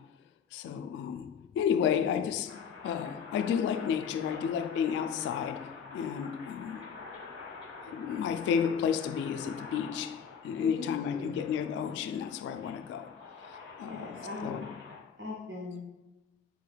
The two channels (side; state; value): right; quieter; 7.3 dB